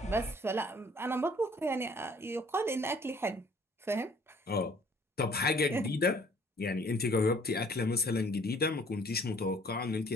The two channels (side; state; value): both; normal; correlation 0.57